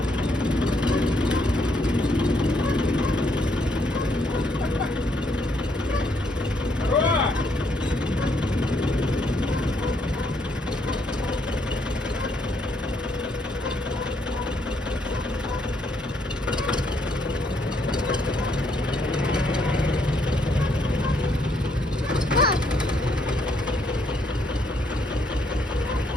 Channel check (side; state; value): both; normal; correlation 0.72